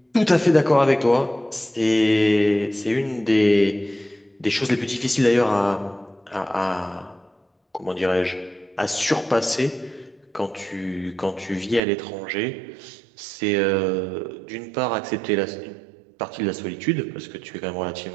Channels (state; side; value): drops out; left; at 11.8 s